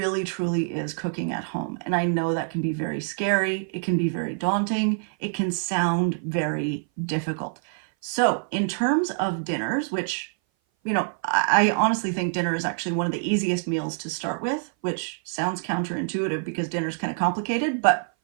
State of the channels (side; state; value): left; silent; 57 dB below the other